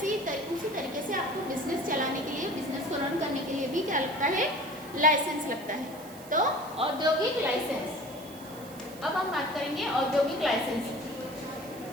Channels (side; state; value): right; noise; hiss, 19 dB below the sound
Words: ही उसी तरीके से आपको बिजनेस चलाने के लिए, बिजनेस को रन करने के लिए भी क्या लगता है, लाइसेंस लगता है। तो औद्योगिक लाइसेंस, अब हम बात करेंगे औद्योगिक लाइसेंस,